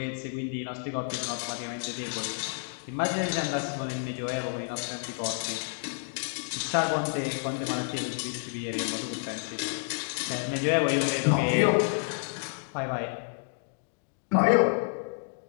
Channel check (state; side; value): silent; right; 58 dB below the other